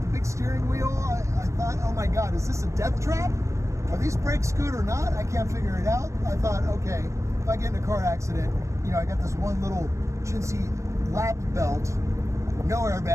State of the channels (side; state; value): left; late; 0.14 ms